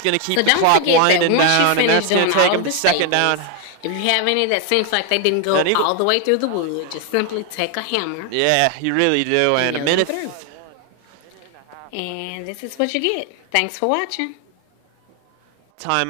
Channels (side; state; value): both; different; correlation 0.01